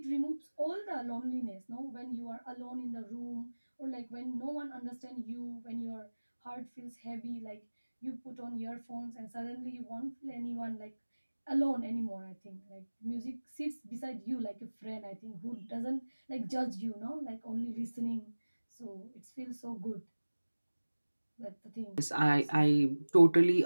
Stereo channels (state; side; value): inverted; both; correlation -1.00